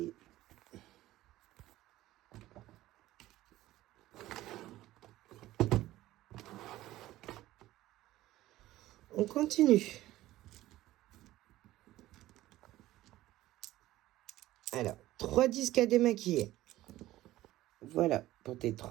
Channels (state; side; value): quieter; left; 15.8 dB